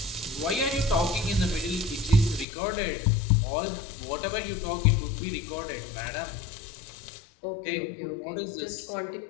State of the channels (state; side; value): drops out; right; at 2.5 s